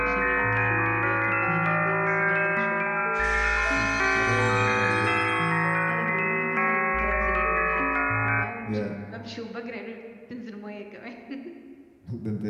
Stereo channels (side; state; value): both; identical; correlation 1.00